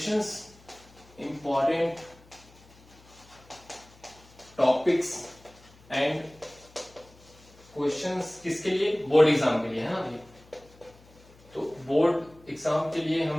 Important topics and questions किसके लिए? बोर्ड एग्जाम के लिए, है ना ये। तो बोर्ड एग्जाम के लिए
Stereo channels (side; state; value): left; noise; hum, 26 dB below the sound